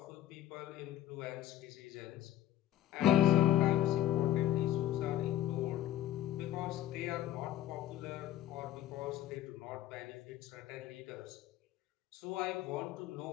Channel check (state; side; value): quieter; right; 12.6 dB